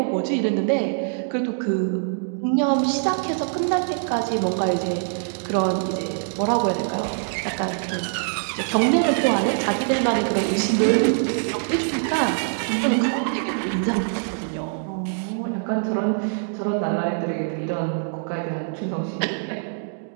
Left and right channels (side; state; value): left; silent; digital silence